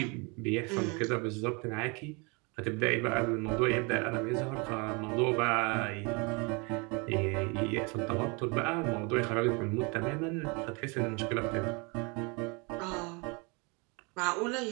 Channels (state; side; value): quieter; left; 30.0 dB